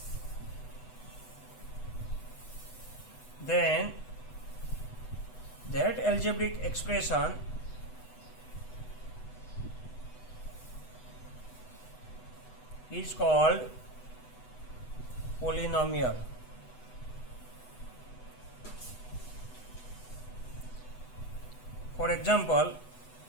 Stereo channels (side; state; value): right; late; 8.0 ms